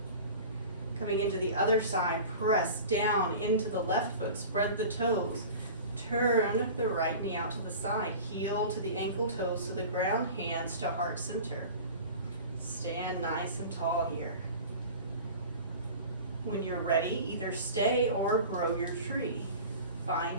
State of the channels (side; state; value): both; inverted; correlation -0.37